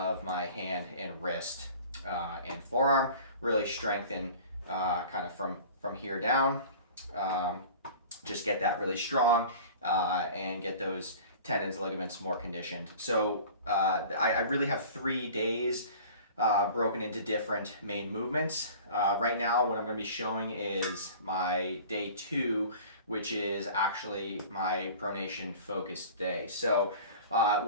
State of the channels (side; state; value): both; inverted; correlation -0.43